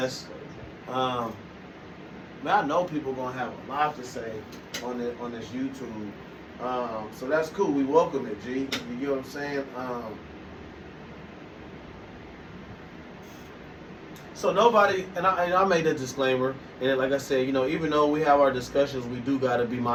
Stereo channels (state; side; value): identical; both; correlation 1.00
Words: man, I know people gonna have a lot to say on this YouTube. So that's cool. We welcome it, G. You get what I'm saying? So nobody, and I made a disclaimer, and like I said, you know, even though we have our discussions, we do got to be